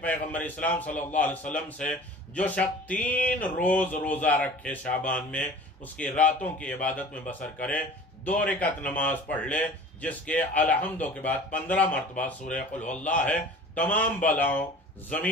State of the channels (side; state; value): both; normal; correlation 0.42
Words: پیغمبر اسلام صلی اللہ علیہ وسلم سے جو شخص 3 روز روزہ رکھے شعبان میں، اس کی راتوں کی عبادت میں بسر کرے، 2 رکعت نماز پڑھ لے جس کے الحمدو کے بعد 15 مرتبہ سورہ قل هو اللہ ہے، تمام بلاؤں،